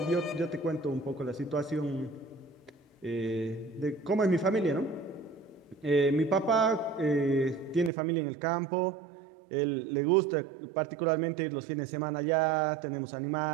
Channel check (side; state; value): left; drops out; at 7.9 s